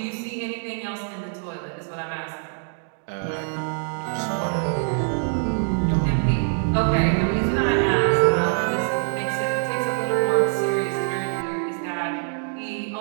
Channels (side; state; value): left; silent; 62 dB below the other